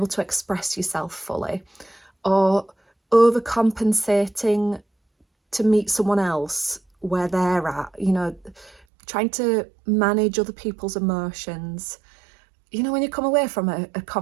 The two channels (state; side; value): drops out; left; at 8.8 s